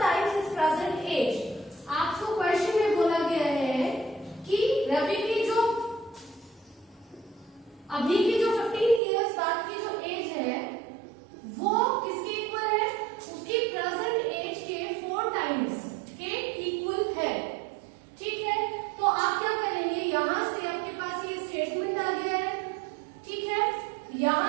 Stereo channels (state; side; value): drops out; left; at 9.0 s